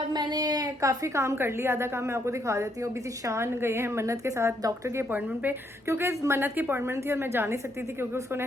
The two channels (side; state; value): both; normal; correlation 0.73